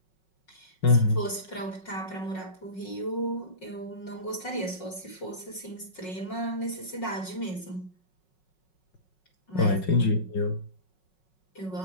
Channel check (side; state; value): right; late; 5.4 ms